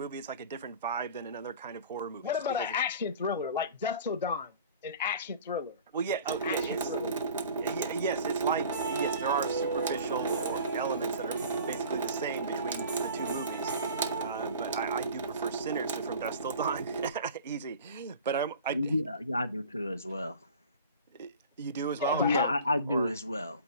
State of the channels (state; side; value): inverted; both; correlation -0.42